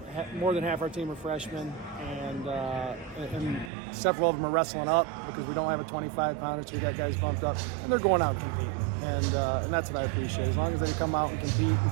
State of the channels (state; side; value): drops out; left; at 3.7 s